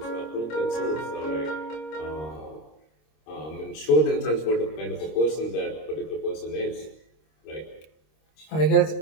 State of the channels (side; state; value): right; late; 26 ms